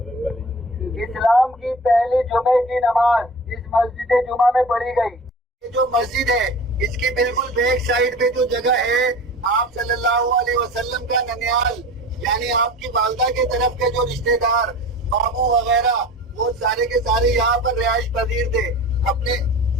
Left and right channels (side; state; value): both; normal; correlation 0.37